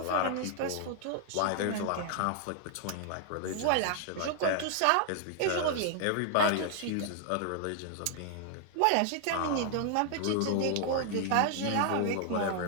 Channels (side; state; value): both; different; correlation 0.00